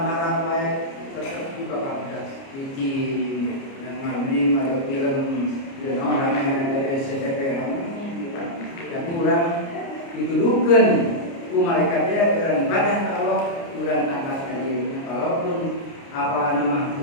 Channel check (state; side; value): late; right; 29 ms